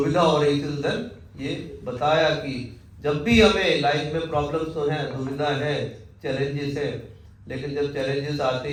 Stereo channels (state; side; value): identical; both; correlation 1.00